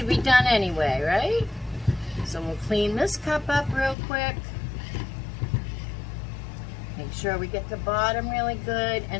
be done anyway, right? So we'll clean this cup up real quick. Make sure we get the bottom really good.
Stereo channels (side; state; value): right; drops out; at 4.0 s